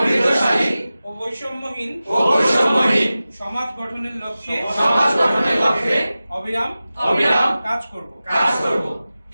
ও বৈষম্যহীন সমাজ গঠনের লক্ষ্যে অবিরাম কাজ করব।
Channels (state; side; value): inverted; both; correlation -0.96